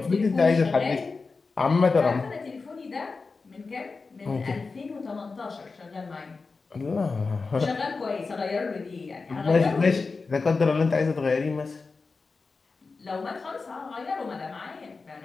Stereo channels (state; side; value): quieter; right; 4.2 dB